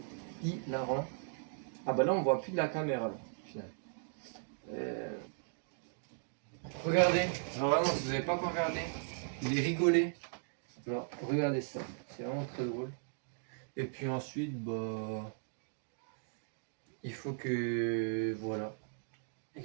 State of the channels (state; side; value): silent; left; digital silence